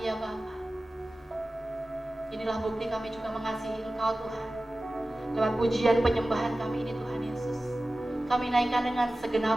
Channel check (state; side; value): normal; both; correlation 0.96